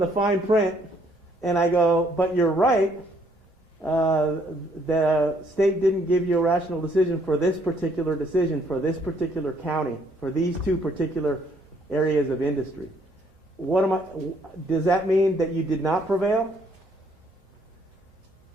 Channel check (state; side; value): normal; both; correlation 0.66